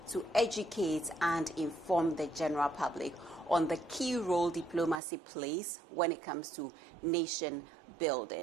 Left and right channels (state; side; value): drops out; left; at 5.0 s